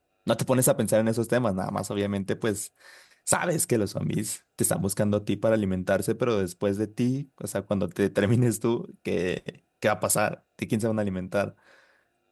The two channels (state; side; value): identical; both; correlation 1.00